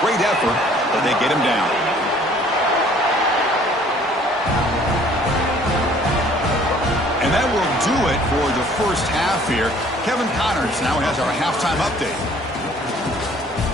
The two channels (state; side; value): normal; both; correlation 0.56